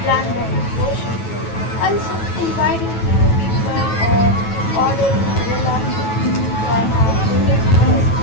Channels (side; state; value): right; late; 9.2 ms